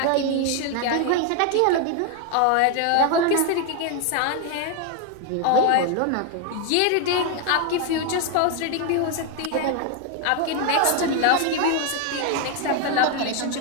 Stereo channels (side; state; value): both; different; correlation 0.01